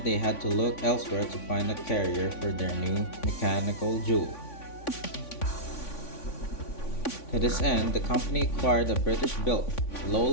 they had to look elsewhere to find a carrier for their new mechanical jewel. To this end, the company acquired a British-built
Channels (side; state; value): right; late; 3.5 ms